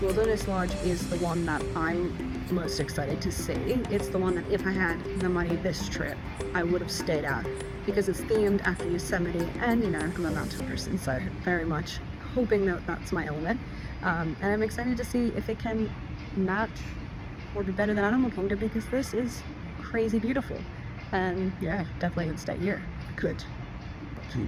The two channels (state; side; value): identical; both; correlation 1.00